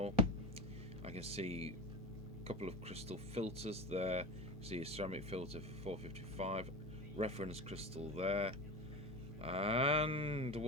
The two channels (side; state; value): both; normal; correlation 0.27